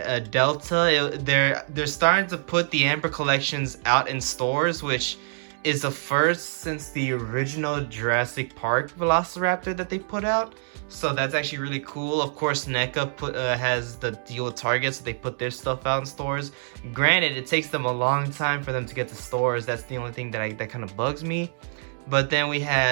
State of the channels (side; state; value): left; silent; digital silence